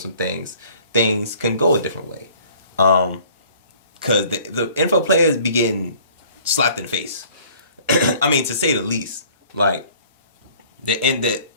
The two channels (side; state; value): both; inverted; correlation -0.53